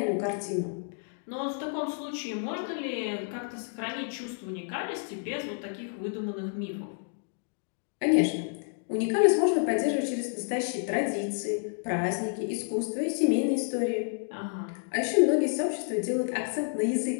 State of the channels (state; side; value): silent; right; 58 dB below the other